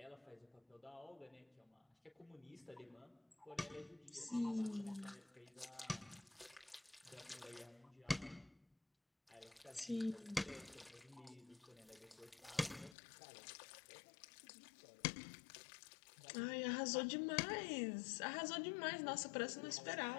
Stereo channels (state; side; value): drops out; right; at 13.0 s